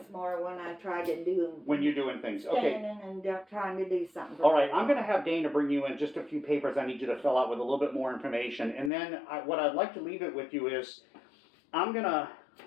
more when I try to do. When you're doing things. Okay. Standing and trying to do something. All right, I'm going to have Dana bring you in just a few papers I need you to fill out with a little bit more information. And then what I'd like to leave it with you is I'm going to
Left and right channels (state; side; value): drops out; right; at 8.9 s